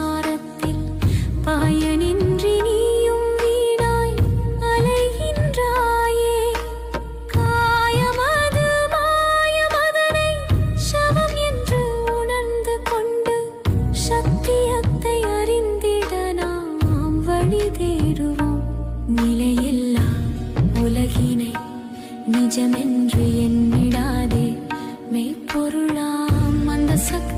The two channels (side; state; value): both; identical; correlation 1.00